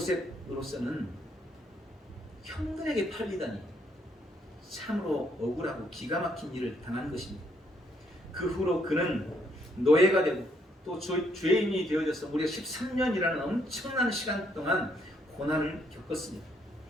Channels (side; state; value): both; normal; correlation 0.72